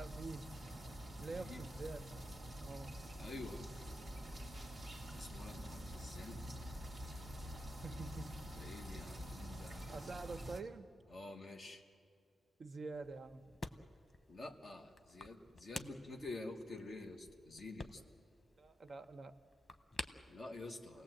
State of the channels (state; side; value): normal; both; correlation 0.86